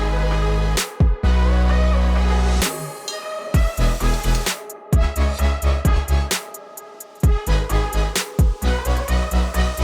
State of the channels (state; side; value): identical; both; correlation 1.00